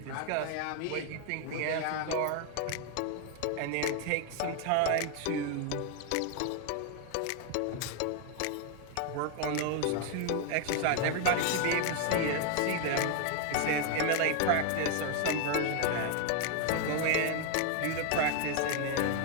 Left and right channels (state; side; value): different; both; correlation 0.00